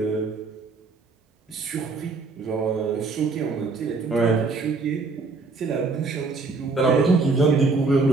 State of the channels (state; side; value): quieter; left; 4.0 dB